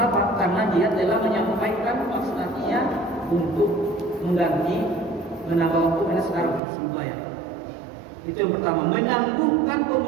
Karena dia telah menyampaikan maksud hatinya untuk mengganti, menambah waktu karena sekarang harus membayar. Itu yang pertama, menangguhkan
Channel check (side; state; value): left; drops out; at 6.6 s